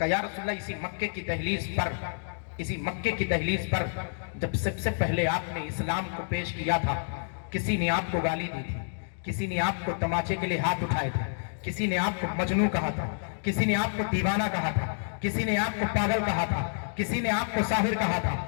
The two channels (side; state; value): right; silent; digital silence